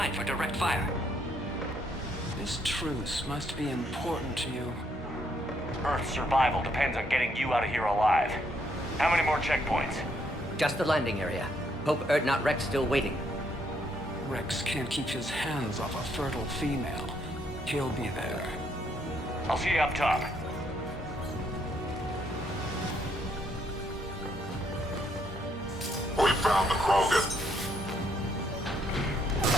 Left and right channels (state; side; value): normal; both; correlation 0.72